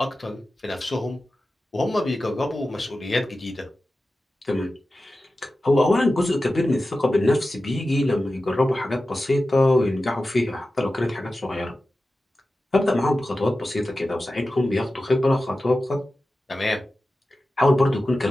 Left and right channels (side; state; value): both; normal; correlation 0.94